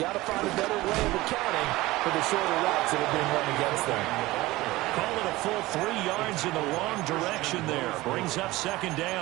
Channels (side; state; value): left; quieter; 19.0 dB